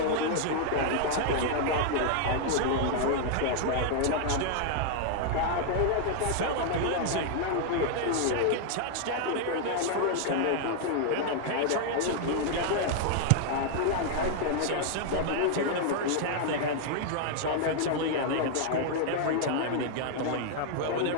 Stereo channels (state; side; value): different; both; correlation 0.00